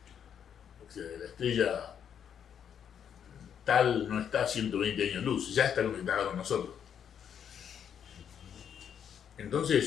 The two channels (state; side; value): quieter; right; 8.4 dB